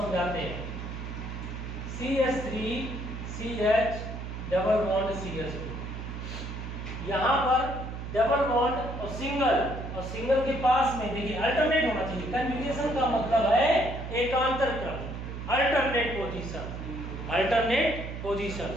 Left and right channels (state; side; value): noise; right; hum, 7 dB below the sound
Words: समझाते हैं। CH3 CH double bond CH2। यहाँ पर डबल बॉन्ड और सिंगल के पास में देखिए अल्टरनेट होना चाहिए। कंजुगेशन का मतलब है एकांतर क्रम, alternate position. Alternate position,